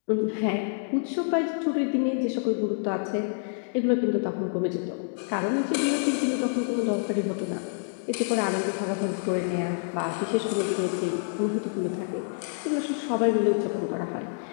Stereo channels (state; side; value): silent; right; digital silence